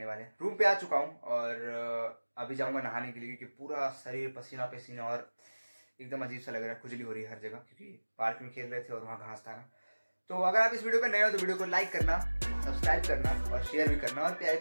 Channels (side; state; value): both; inverted; correlation -1.00